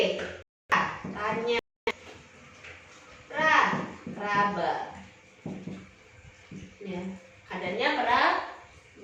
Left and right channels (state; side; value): identical; both; correlation 1.00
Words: tanya. Raba. Ya.